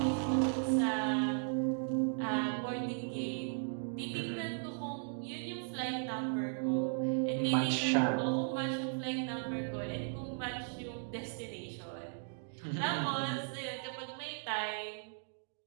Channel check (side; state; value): left; silent; digital silence